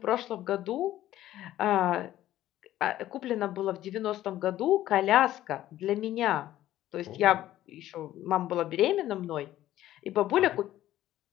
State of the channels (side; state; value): right; quieter; 13.7 dB